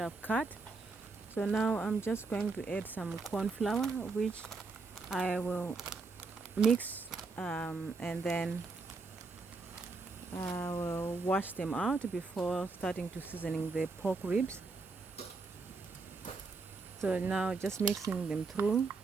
cut. So now I'm just going to add some corn flour, which I will mix, and then I will wash them out before starting to seasoning the pork ribs. So now just mixing them through.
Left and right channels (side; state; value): left; quieter; 4.0 dB